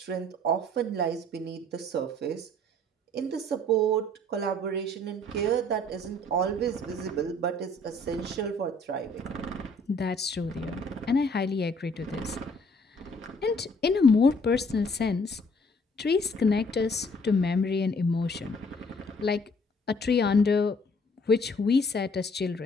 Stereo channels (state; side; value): normal; both; correlation 0.60